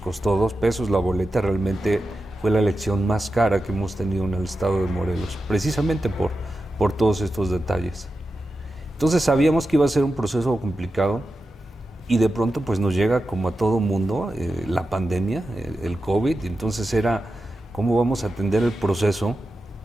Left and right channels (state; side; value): normal; both; correlation 0.91